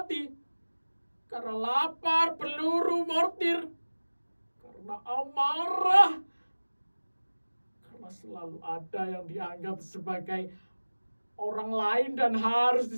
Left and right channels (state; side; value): inverted; both; correlation -1.00